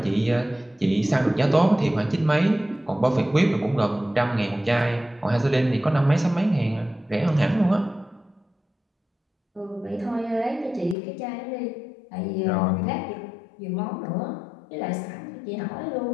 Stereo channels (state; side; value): drops out; right; at 11.0 s